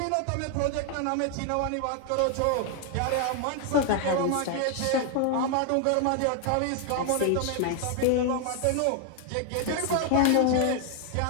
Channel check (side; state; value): both; different; correlation 0.00